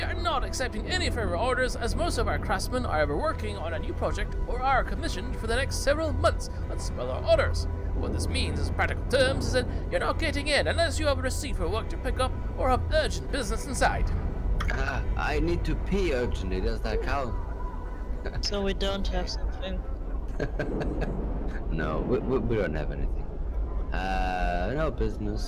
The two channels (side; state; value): both; identical; correlation 1.00